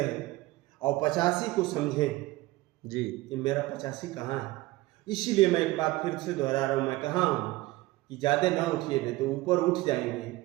और 85 को समझे जी कि मेरा 85 कहाँ है। इसीलिए मैं एक बात फिर से दोहरा रहा हूँ, मैं कहा हूँ कि ज़्यादा न उठिए, नहीं तो ऊपर उठ जाएंगे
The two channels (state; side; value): quieter; left; 19.0 dB